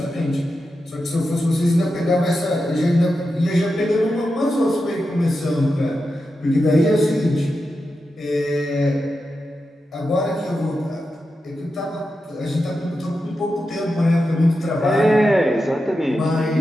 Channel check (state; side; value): normal; both; correlation 0.89